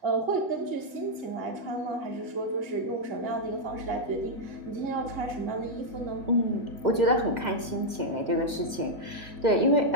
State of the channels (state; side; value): late; left; 2.1 ms